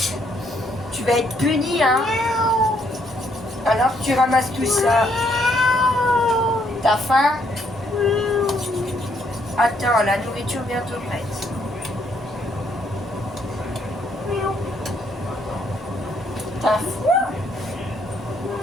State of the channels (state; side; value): normal; both; correlation 0.70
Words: Tu vas être puni, hein. Alors tu ramasses tout ça. T'as faim? Attends, la nourriture bientôt prête. T'as froid?